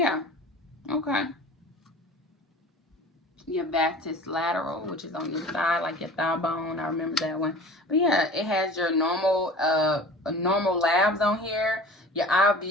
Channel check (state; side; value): normal; both; correlation 0.40